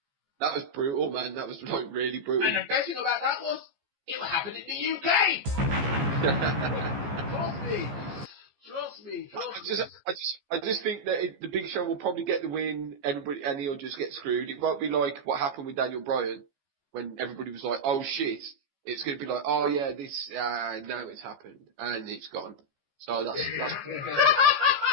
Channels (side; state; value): left; late; 14 ms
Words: That was brutal, man. That was like really brutal. And the best thing about that was, it happened in the UK. Trust me. I just think that the Big Show will probably get the win, everybody, and he'll just get screwed. It won't be like what happened with Daniel Bryan, when everybody was like, "Oh shit!" It's going to be like, "Oh yeah, this now it's happened and it's gone." So that's